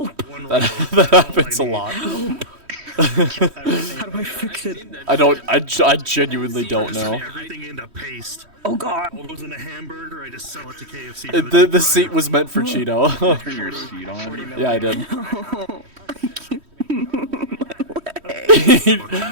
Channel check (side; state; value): left; late; 3.1 ms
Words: happens a lot. How do I fix it? I genuinely don't know. Everything into paste. Oh god. All goes into hamburger. I just sell it to KFC. The seat was meant for Cheeto. Turn your seat on. Yeah, I did.